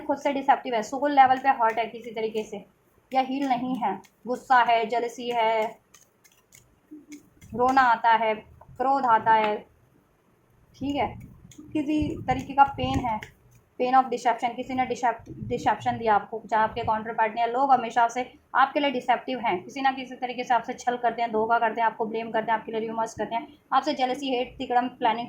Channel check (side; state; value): both; identical; correlation 1.00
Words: से डिसेप्टिव है, सोल लेवल पे हर्ट है किसी तरीके से, या हील नहीं है, गुस्सा है, जेलसी है, रोना आता है, क्रोध आता है, ठीक है, किसी तरीके का पेन है, पेन ऑफ डिसेप्शन, किसी ने डिसेप्शन दिया आपको, चाहे आपके काउंटर पार्टनर, लोग हमेशा से आपके लिए डिसेप्टिव हैं, किसी ना किसी तरीके से आपसे छल करते हैं, धोखा करते हैं, आपको ब्लेम करते हैं, आपके लिए र्यूमर्स करते हैं, आपसे जेलसी, हेट, तिकड़म, प्लानिंग,